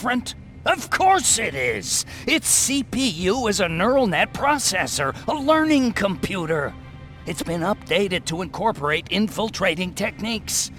Of course it is! Its CPU is a neural net processor, a learning computer. It's been updated to incorporate infiltrating techniques.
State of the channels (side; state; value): both; identical; correlation 1.00